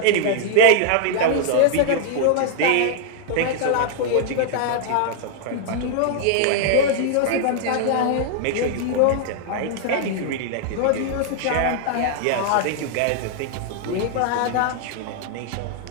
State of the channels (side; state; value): both; different; correlation -0.01